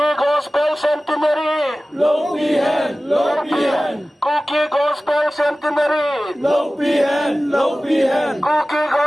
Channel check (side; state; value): both; normal; correlation 0.97